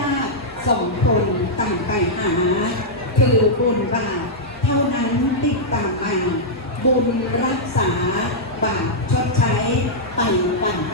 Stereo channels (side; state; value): both; normal; correlation -0.09